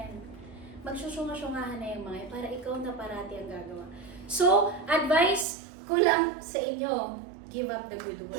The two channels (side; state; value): left; drops out; at 5.5 s